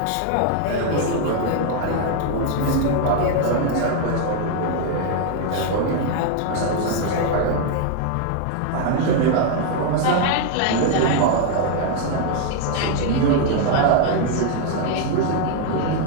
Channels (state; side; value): different; both; correlation 0.00